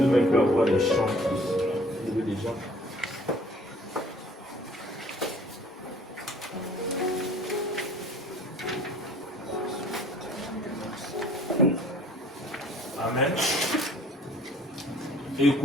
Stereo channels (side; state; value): both; normal; correlation 0.54